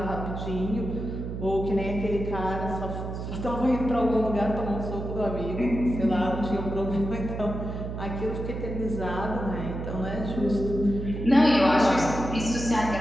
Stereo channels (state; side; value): noise; right; hum, 6 dB below the sound